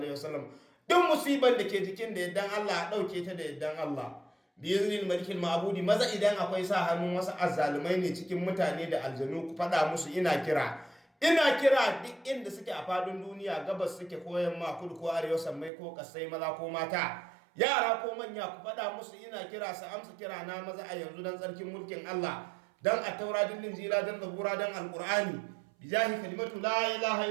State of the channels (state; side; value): drops out; left; at 15.7 s